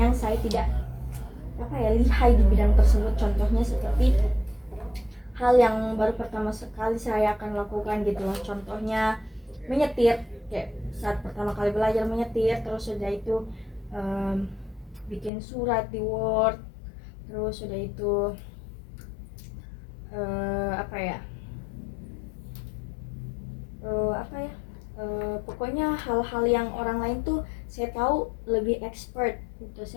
yang saya tidak lihai di bidang tersebut. Contohnya seperti hal yang baru pertama sekali saya akan lakukan gitu loh. Contohnya menyetir, kayak saat pertama kali belajar menyetir, terus sudah itu bikin surat di Word, terus sudah itu pokoknya hal-hal yang orang lain tuh saya tahu lebih expert gitu,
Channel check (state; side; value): drops out; right; at 15.3 s